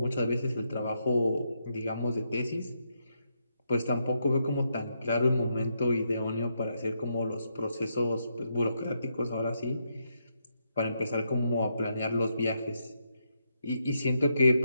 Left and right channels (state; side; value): inverted; both; correlation -0.80